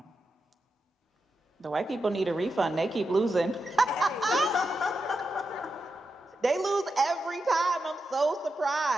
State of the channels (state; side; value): normal; both; correlation 0.88